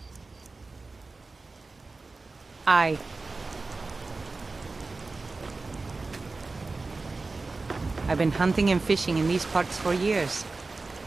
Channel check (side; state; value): left; quieter; 3.6 dB